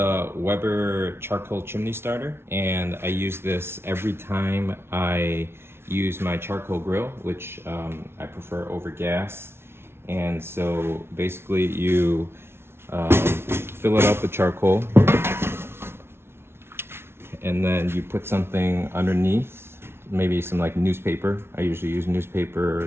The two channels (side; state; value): left; late; 0.12 ms